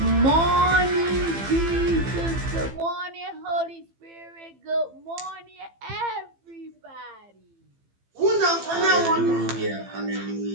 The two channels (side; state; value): left; late; 15 ms